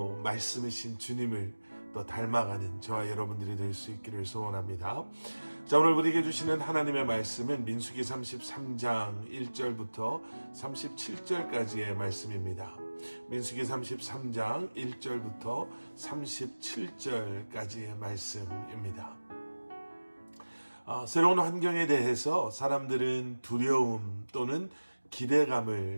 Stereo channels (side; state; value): both; inverted; correlation -1.00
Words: 말씀이신 주님을 또 닮아가는 저와 여러분들이 될 수 있기를 소원합니다. 자, 오늘 우리에게 주시는 하나님의 말씀은 민수기 33장 1절부터 37절까지의 말씀입니다. 민수기 33장 1절부터 37절까지의 말씀입니다. 새로운 환경에 대해서 사람들은 두려움 또는